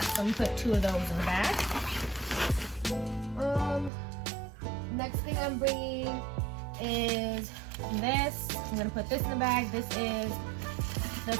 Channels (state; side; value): drops out; left; at 3.9 s